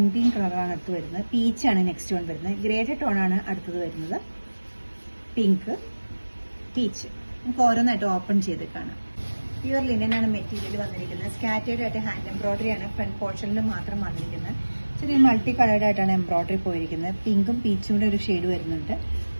കളറാണ് അടുത്ത് വരുന്നത്. പീച്ചാണ് നെക്സ്റ്റ് വൺ വരുന്നത്. ഗ്രേഡ് ടോണാണ് അടുത്തത് വരുന്നത്. Pink, peach. നമുക്ക് ഓരോന്നായിട്ട് ഓപ്പൺ ചെയ്ത് കാണാം. പ്യുവർ ലിനനാണ് മെറ്റീരിയൽ വന്നിരിക്കുന്നത്. സ്കാറ്റേർഡ് ആയിട്ട് ഹാൻഡ് എംബ്രോയിഡറി ആണ് ഫ്രണ്ട് പോർഷനിൽ മാത്രം വന്നിരിക്കുന്നത്. ചെറിയ മൾട്ടി കളേർഡ് ആയിട്ടാണ് എംബ്രോയിഡറി പോയിരിക്കുന്നത്. പിങ്കും പീച്ചും കൂടെ ഒരു ഷെയ്ഡ് വരുന്നുണ്ട്.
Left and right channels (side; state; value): both; inverted; correlation -1.00